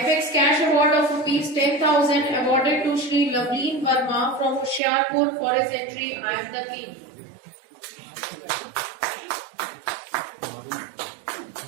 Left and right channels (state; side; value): drops out; left; at 4.8 s